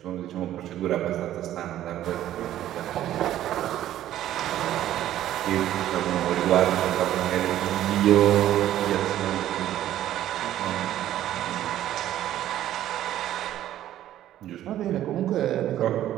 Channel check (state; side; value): quieter; left; 12.6 dB